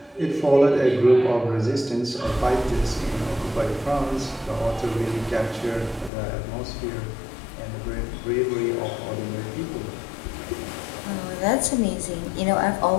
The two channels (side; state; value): right; drops out; at 6.1 s